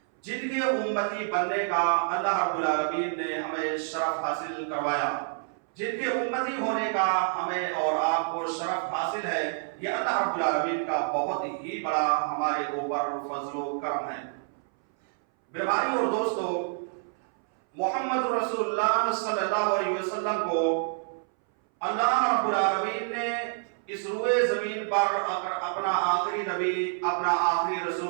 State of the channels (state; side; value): silent; left; 59 dB below the other